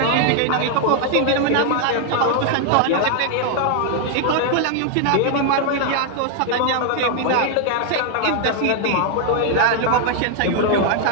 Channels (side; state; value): both; different; correlation 0.00